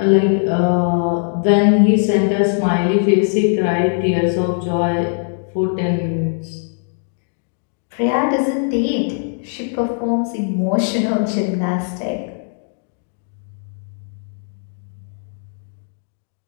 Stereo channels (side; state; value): right; silent; digital silence